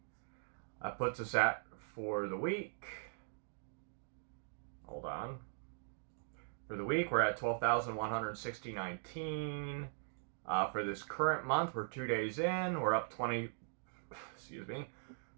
That puts us at, for the week, hold on. For the week, we're at 12,160.19. For this current month, we're 2 days in. We're up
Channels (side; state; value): left; silent; digital silence